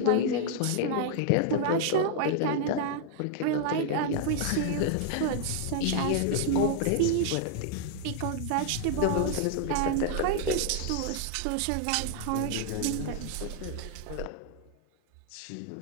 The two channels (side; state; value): both; different; correlation 0.00